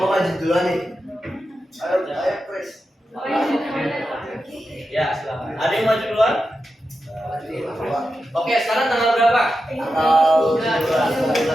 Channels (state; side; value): normal; both; correlation 0.90